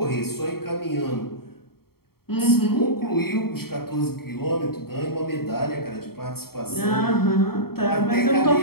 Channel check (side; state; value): right; late; 0.95 ms